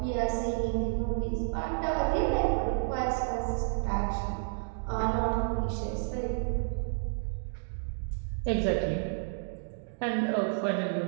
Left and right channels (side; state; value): left; silent; digital silence